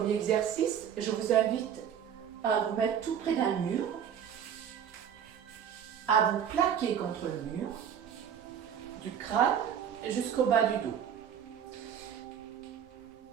exercice, je vous invite à vous mettre tout près d'un mur, à vous plaquer contre le mur, du crâne jusqu'au bas du dos.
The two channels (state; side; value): quieter; left; 8.6 dB